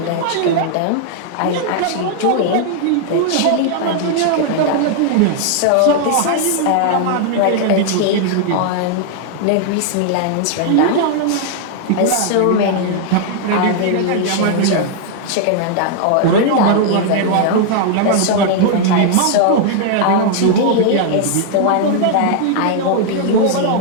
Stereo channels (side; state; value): both; different; correlation 0.00